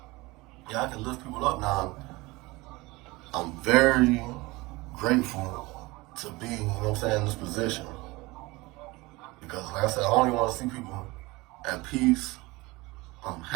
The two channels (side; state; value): left; quieter; 22.4 dB